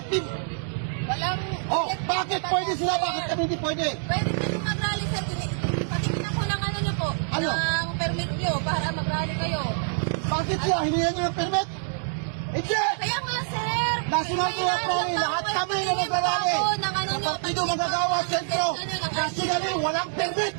Walang... Oh, bakit pwede sila? Bakit kami hindi pwede? Pwede kayo mag-rally, sir. Patingin ako ng ano nyo po. Ano? Ng permit nyo para mag-rally kayo. Bakit sila? Hiningan nyo ng permit? Hindi! Kaya nga, sir. National Kaya Prayer nga, Rally, lahat bawal kami na patingin pa nagrarally. ako ng ano nyo. Kapag dito magagawa, sentro. Nationally, walang permit.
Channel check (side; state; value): left; silent; 61 dB below the other